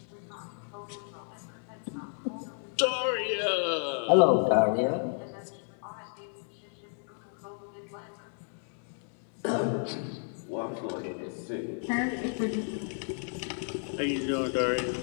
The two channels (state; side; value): silent; right; 56 dB below the other